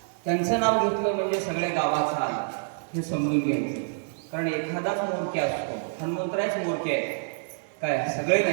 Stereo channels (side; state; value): left; silent; 60 dB below the other